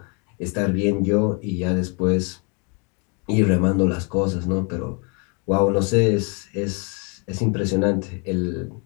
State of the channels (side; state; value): right; quieter; 34.8 dB